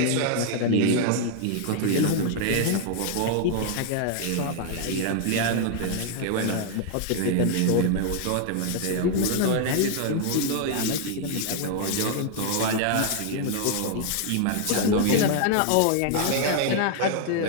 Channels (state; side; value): different; both; correlation 0.00